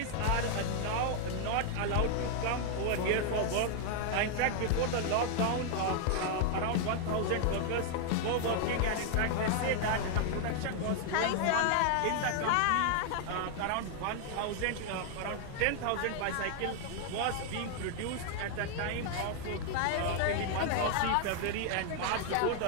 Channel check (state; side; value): different; both; correlation 0.00